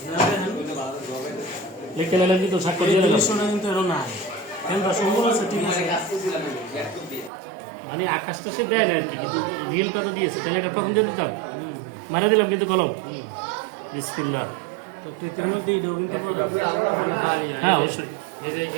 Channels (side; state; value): left; drops out; at 7.3 s